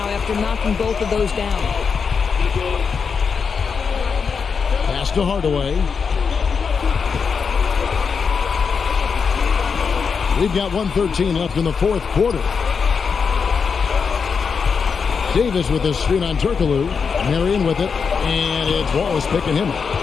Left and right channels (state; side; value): quieter; right; 5.8 dB